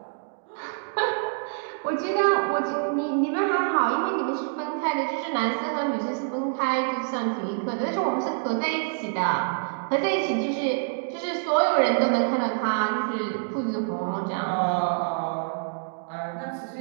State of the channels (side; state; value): left; silent; digital silence